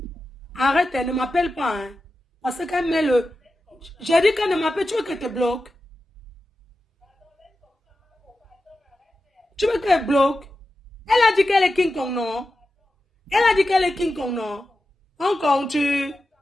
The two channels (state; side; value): normal; both; correlation 0.92